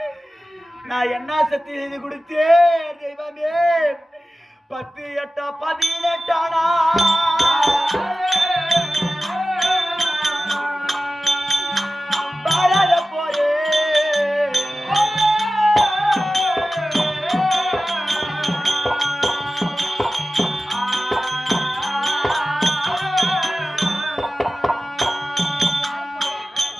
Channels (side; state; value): both; normal; correlation 0.95